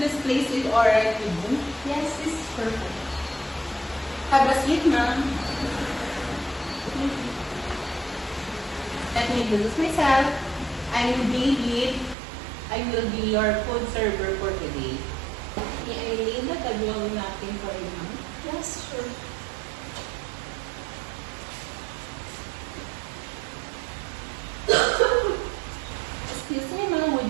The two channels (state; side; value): drops out; left; at 12.2 s